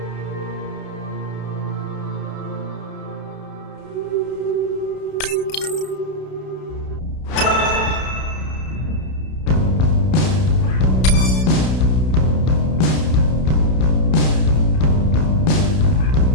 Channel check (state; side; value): late; right; 32 ms